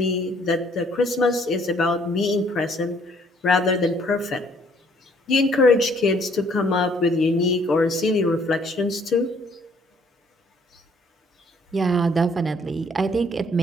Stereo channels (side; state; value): both; normal; correlation 0.63